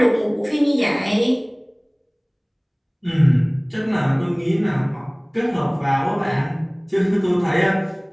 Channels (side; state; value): both; identical; correlation 1.00